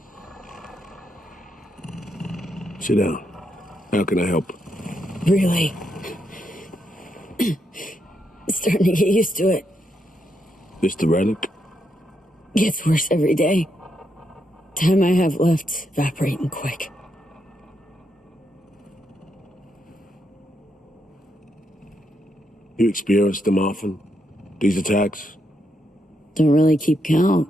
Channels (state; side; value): normal; both; correlation 0.80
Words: Sit down. How can I help? Really? Starting to get used to it. This the relic? Gets worse every day. Time I have left evaporating quick. You experience them often? These attacks? Don't really keep